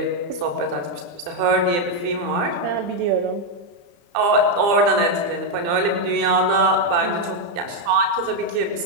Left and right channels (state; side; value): late; left; 34 ms